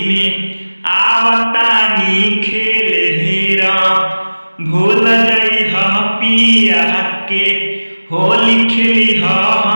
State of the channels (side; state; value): both; inverted; correlation -1.00